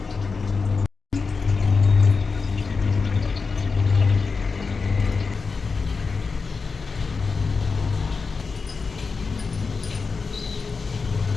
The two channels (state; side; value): quieter; right; 4.7 dB